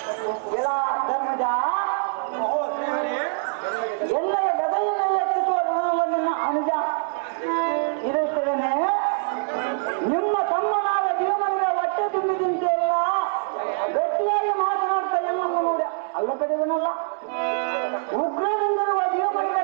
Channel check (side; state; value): left; silent; digital silence